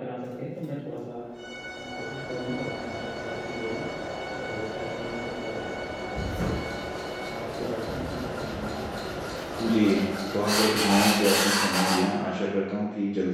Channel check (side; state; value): both; identical; correlation 1.00